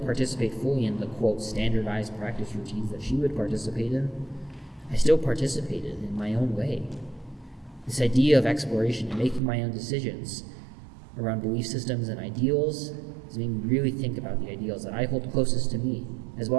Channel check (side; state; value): left; drops out; at 9.4 s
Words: participate fully in the, quote, standardized practice routines that she would participate in, I still participated in my own way. This idea of exploration and making my own decisions around belief systems and ideals has made me really think about the ideals that I hold closest to me, as